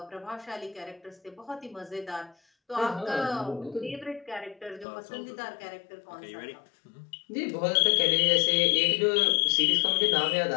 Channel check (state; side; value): drops out; right; at 4.9 s